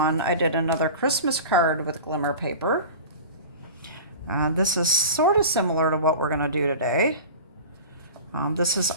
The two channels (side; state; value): both; inverted; correlation -0.35